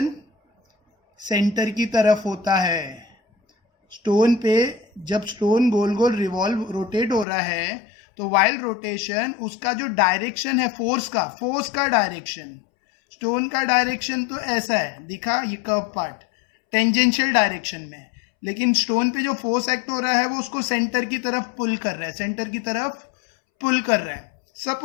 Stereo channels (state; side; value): drops out; right; at 7.2 s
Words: सेंटर की तरफ होता है। स्टोन पे जब स्टोन गोल गोल रिवॉल्व रोटेट हो रहा है तो वाइल रोटेशन उसका जो डायरेक्शन है फोर्स का डायरेक्शन, स्टोन का डायरेक्शन तो ऐसा है, दिखा ये कर्व पार्ट टेंजेंशियल डायरेक्शन में, लेकिन स्टोन पे जो फोर्स एक्ट हो रहा है वो उसको सेंटर की तरफ पुल कर रहा है, सेंटर की तरफ पुल कर रहा है।